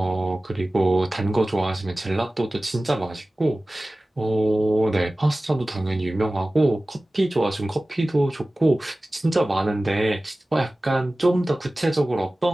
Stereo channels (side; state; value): both; normal; correlation 0.97